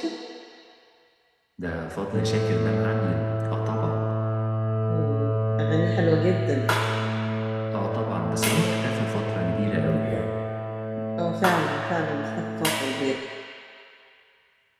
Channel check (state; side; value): identical; both; correlation 1.00